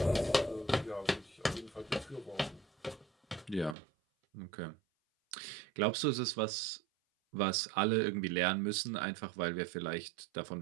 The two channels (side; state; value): left; drops out; at 3.8 s